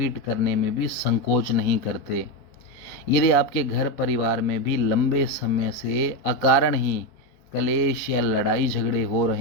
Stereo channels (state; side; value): late; right; 4.1 ms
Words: करने में भी संकोच नहीं करते। यदि आपके घर परिवार में भी लंबे समय से अकारण ही कलेश या लड़ाई झगड़े हो